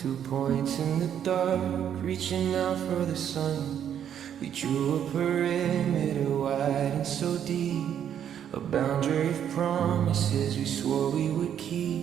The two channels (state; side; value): quieter; left; 9.3 dB